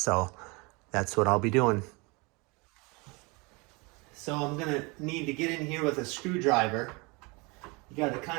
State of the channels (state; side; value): quieter; left; 27.9 dB